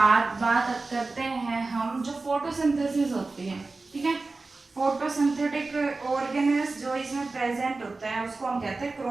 बात करते हैं हम जो फोटोसिंथेसिस होती है, ठीक है। फोटोसिंथेटिक ऑर्गेनेल्स जो इसमें प्रेजेंट होता है उसको हम कहते हैं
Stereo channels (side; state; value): left; quieter; 3.6 dB